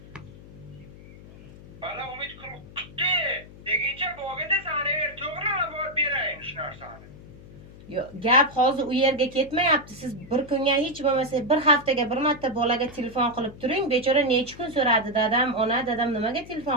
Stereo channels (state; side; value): noise; left; hum, 18 dB below the sound